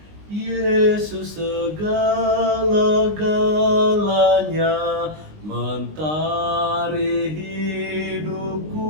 Yesus segala-galanya, mentari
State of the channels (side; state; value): left; late; 19 ms